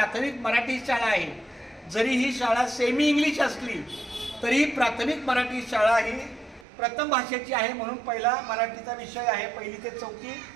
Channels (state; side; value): drops out; left; at 6.7 s